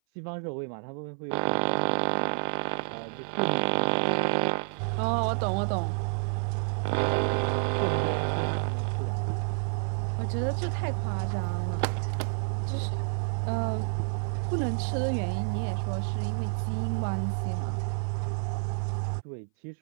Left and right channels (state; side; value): silent; left; 58 dB below the other